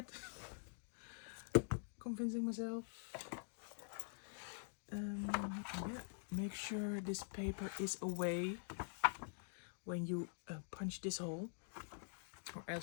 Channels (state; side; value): silent; right; digital silence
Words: Convincing myself. Yeah, make sure this paper is away when you punch this hole, or